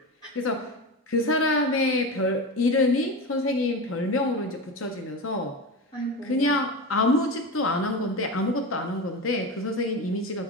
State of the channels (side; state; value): both; normal; correlation 0.24